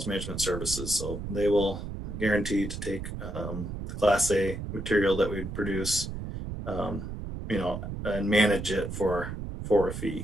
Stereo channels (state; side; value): noise; right; rumble, 7 dB below the sound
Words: management services. So they will guarantee to take the Class A material that we produce, and manage it for a